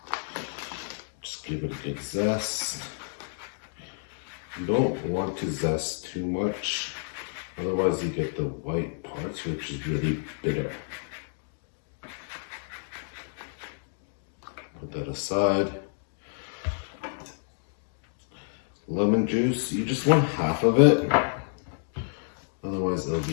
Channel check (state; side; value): silent; right; digital silence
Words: just give it a good zest. You don't want to zest too much, otherwise you get the white parts, which is really bitter. Put that aside. Lemon juice, you just want half of it, otherwise it'll